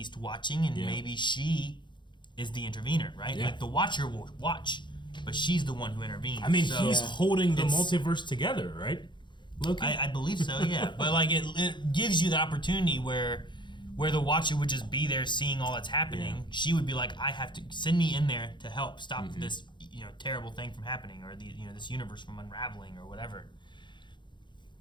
watching, and maybe she is the intervener, right? Yeah. Like the Watcher will watch, but she's the one who intervenes. I mean, so he's holding the it's- multiverse together, right? Loki. I believe so, yeah. But like it gives you the opportunity where the Watcher would just be there seeing all that's happening. Yeah. She would be like, I have to send me in there to help stop this terrible thing from happening, or this universe from unraveling or whatever.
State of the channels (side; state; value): right; late; 0.23 ms